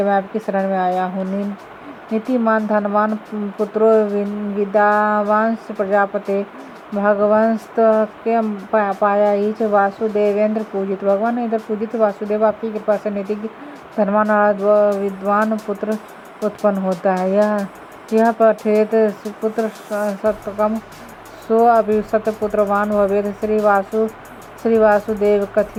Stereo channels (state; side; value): identical; both; correlation 1.00